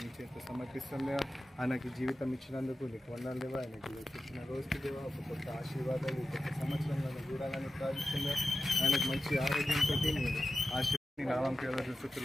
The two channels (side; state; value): both; normal; correlation 0.93